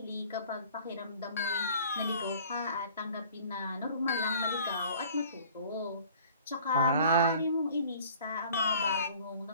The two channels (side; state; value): both; inverted; correlation -0.50